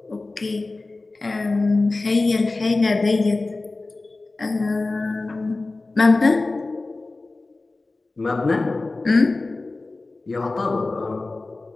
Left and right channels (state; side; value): quieter; right; 3.3 dB